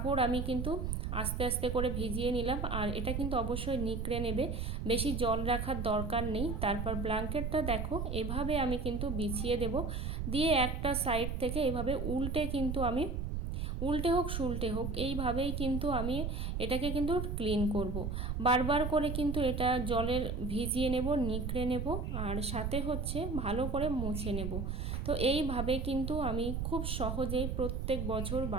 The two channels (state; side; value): noise; right; rumble, 2 dB below the sound